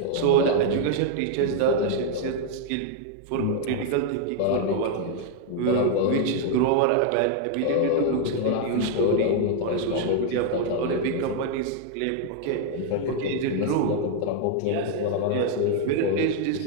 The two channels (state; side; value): different; both; correlation 0.00